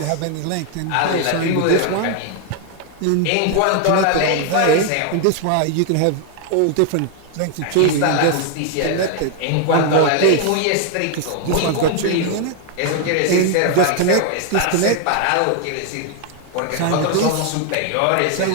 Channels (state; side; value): different; both; correlation 0.00